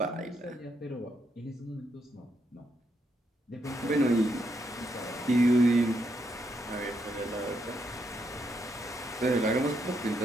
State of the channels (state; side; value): normal; both; correlation 0.78